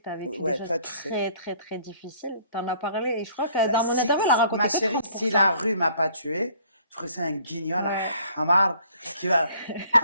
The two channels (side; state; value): both; inverted; correlation -0.59